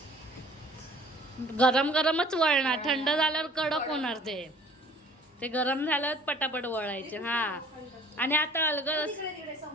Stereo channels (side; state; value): both; normal; correlation 0.52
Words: गरम गरमच वळणार, थंड झाल्यावर कडक होणार ते. ते गरम झाल्यावर पटापट वळायचे. हा आणि आता अलगद तिकडे